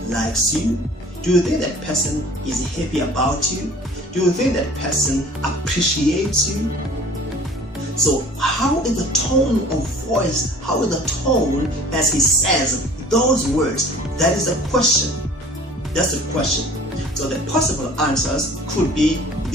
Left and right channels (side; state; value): both; normal; correlation 0.48